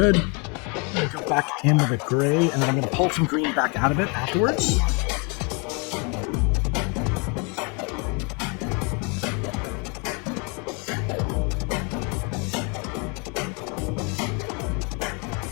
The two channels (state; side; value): quieter; right; 33.1 dB